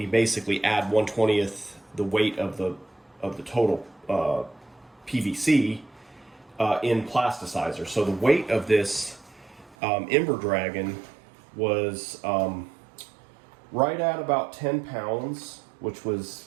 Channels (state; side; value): drops out; left; at 9.8 s